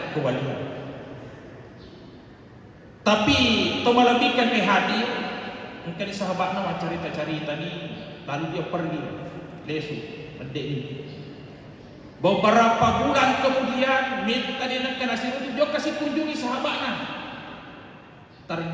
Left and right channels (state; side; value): identical; both; correlation 1.00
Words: kewalian. Tapi tomalabihkan ke hadir mungkin sahabatnya mau cerita-cerita ni, lalu dia pergi lesu mendek ni. Beberapa bulan kemudian minta dia nak nasi itu dia kasih kunjungi sahabatnya.